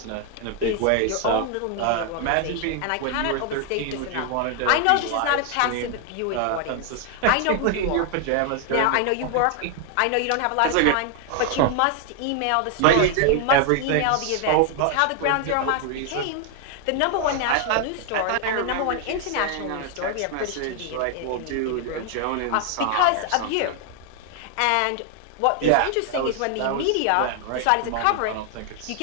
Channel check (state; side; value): different; both; correlation 0.00